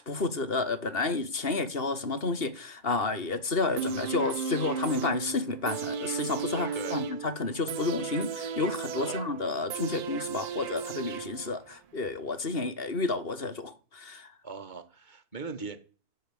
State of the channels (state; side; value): late; right; 2.8 ms